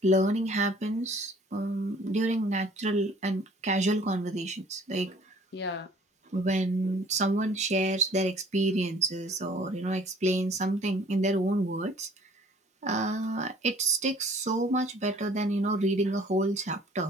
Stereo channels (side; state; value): both; normal; correlation 0.53